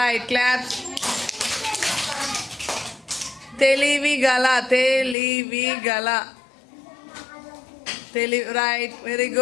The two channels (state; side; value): drops out; right; at 5.2 s